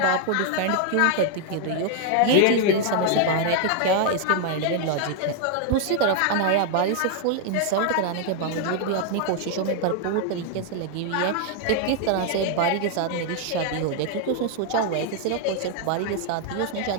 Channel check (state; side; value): different; both; correlation 0.00